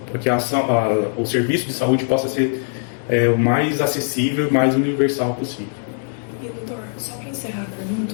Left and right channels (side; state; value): right; silent; digital silence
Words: o serviço de saúde possa ser o mais acessível e mais universal possível. E, doutor, só para encerrar a